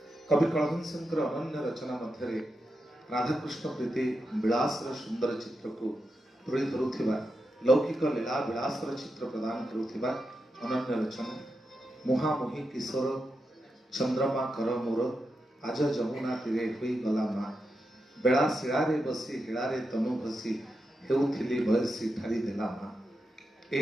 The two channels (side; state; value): both; normal; correlation 0.87